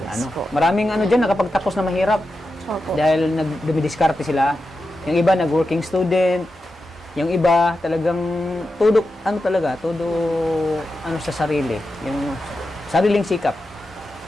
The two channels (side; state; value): both; normal; correlation 0.90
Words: Maraming diyan nakapagtapos na mahirap. Opo. Dahil dumidiskarte sila. Yung iba nag-working student, yung iba talagang todo sa sarili, yung sariling sikap.